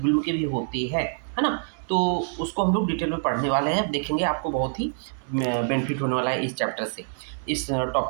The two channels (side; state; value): left; silent; 61 dB below the other